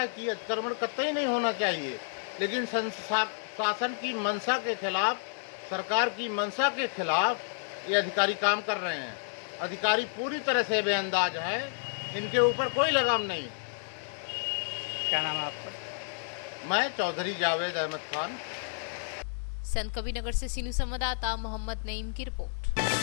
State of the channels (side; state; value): right; silent; digital silence